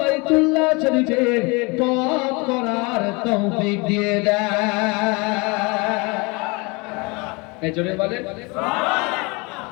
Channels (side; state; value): right; quieter; 28.0 dB